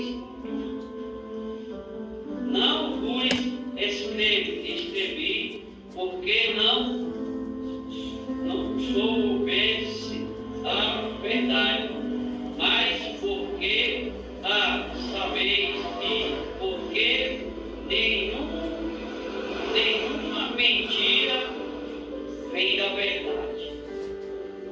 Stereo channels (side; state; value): both; identical; correlation 1.00